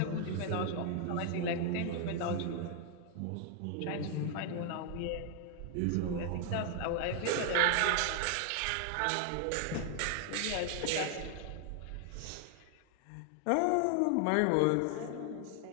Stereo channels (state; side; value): different; both; correlation 0.00